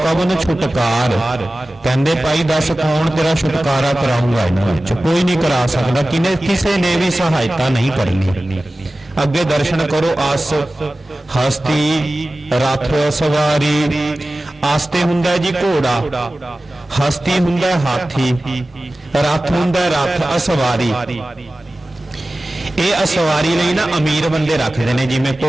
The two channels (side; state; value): both; normal; correlation 0.96